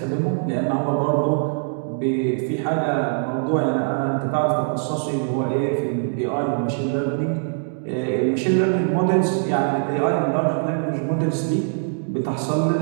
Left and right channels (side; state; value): left; silent; digital silence